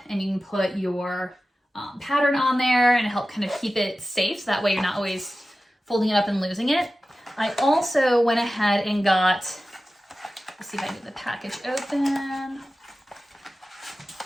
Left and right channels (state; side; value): normal; both; correlation 0.95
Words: and you can put your pattern on there and help kind of keep it safe. So that way you're not always folding it up and losing it. I also went ahead and got, let's see if I can get the package open.